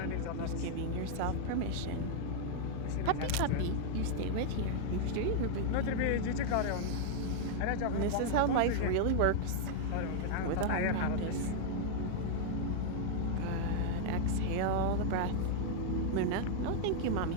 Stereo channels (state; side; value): different; both; correlation -0.01